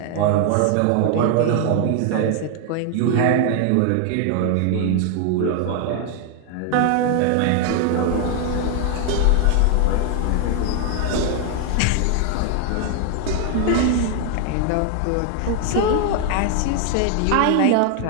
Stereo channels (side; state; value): both; different; correlation 0.00